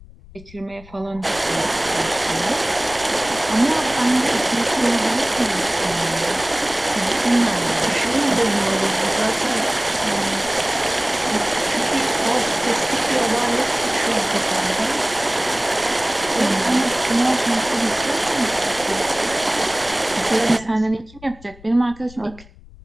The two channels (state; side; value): noise; left; rumble, 21 dB below the sound